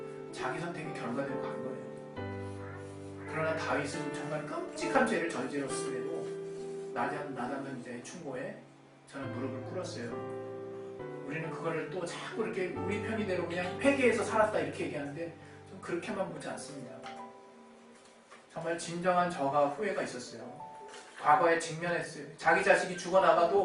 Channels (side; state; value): both; identical; correlation 1.00